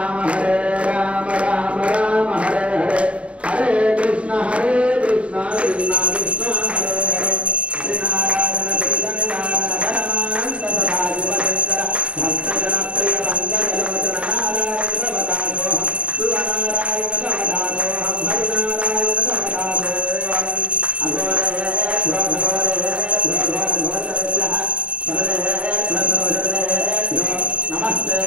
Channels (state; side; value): late; left; 0.062 ms